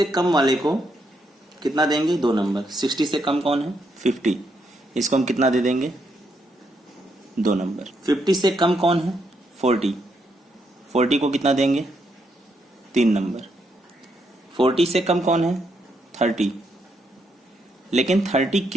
कम वाले को कितना देंगे, 2 नंबर। 60 से कम कौन है, 50, इसको हम कितना दे देंगे, 2 नंबर। 50 से कम कौन है, 40, 40 को कितना देंगे, 3 नंबर। 40 से कम कौन है, 30, लेकिन 30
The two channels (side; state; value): both; normal; correlation 0.78